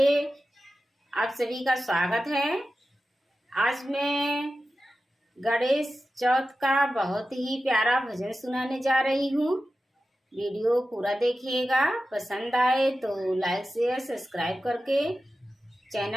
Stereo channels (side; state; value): both; normal; correlation 0.93